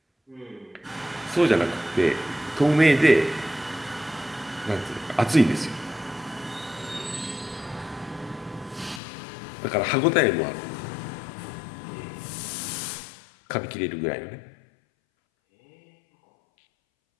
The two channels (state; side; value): drops out; right; at 9.0 s